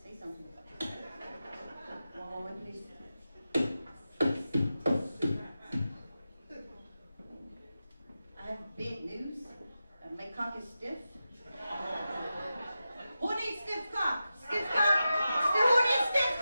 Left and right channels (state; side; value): inverted; both; correlation -0.91